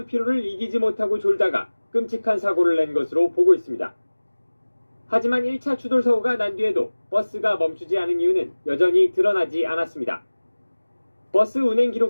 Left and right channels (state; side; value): inverted; both; correlation -1.00